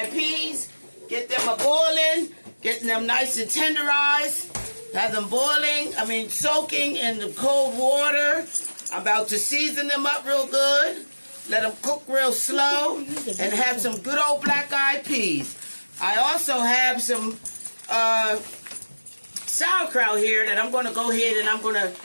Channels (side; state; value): both; inverted; correlation -1.00